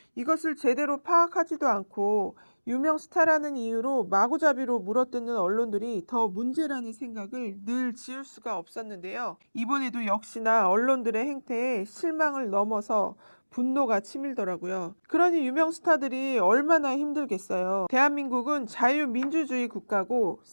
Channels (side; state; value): both; inverted; correlation -1.00